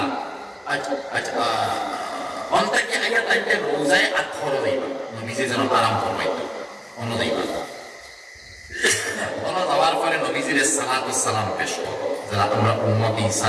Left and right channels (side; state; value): both; identical; correlation 1.00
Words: আচ্ছা অন্তাকে আইয়া তাইতে রোজায় আর খরচ দেইবা নবীজি যেন আরাম ফরমাইতো অন্য দেইবা ওনা যাওয়ার পরে নবীজির সালাতু সালাম পেশ করো, যারা আমরা উম্মতি